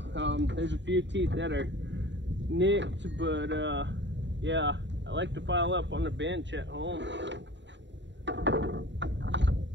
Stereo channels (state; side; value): late; left; 0.53 ms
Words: There's a few teeth that are nicked, but yeah, I like to file up on the bench at home.